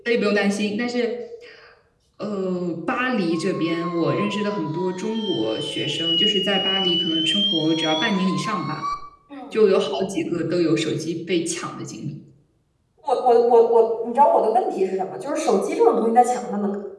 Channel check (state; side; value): identical; both; correlation 1.00